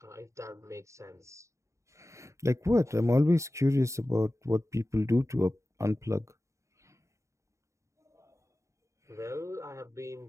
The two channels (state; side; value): late; left; 0.14 ms